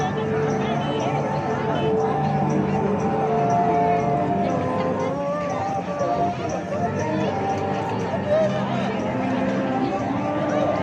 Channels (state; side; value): identical; both; correlation 1.00